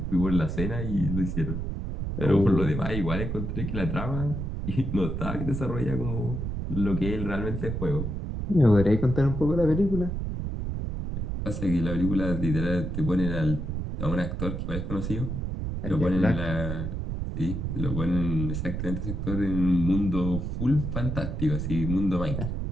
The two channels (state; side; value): noise; right; rumble, 3 dB below the sound